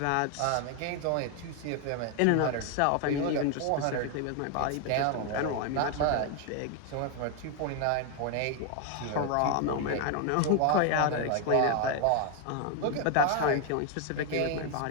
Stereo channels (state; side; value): different; both; correlation 0.01